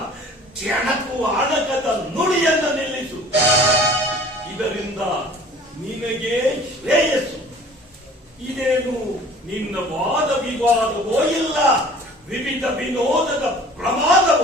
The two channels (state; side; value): normal; both; correlation 0.49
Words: ಕೆಣಕುವ ಅಣಕದ ನುಡಿಯನ್ನ ನಿಲ್ಲಿಸು. ಇದರಿಂದ ನಿನಗೆ ಶ್ರೇಯಸ್ಸು. ಇದೇನು ನಿನ್ನ ವಾದ ವಿವಾದವೋ ಇಲ್ಲ ವಿವಿಧ ವಿನೋದದ